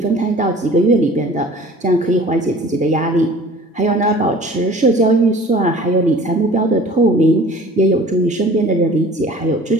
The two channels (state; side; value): normal; both; correlation 0.46